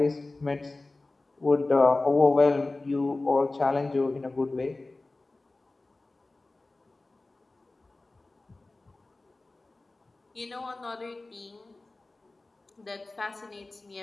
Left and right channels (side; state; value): right; quieter; 3.1 dB